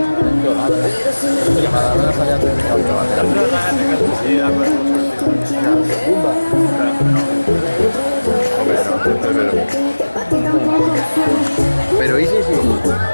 Pero ¿y sí?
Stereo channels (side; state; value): both; inverted; correlation -1.00